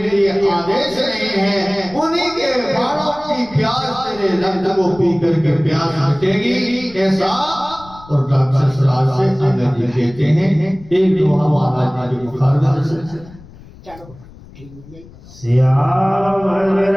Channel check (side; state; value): left; noise; rumble, 21 dB below the sound